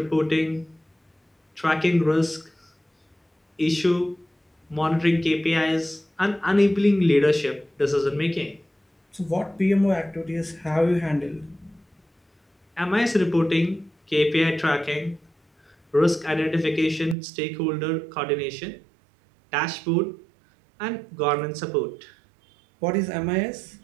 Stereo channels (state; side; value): drops out; left; at 17.2 s